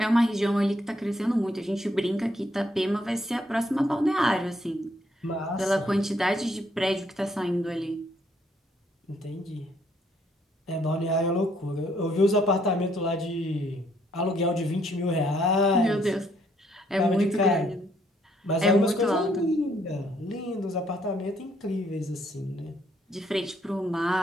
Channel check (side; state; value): both; normal; correlation 0.69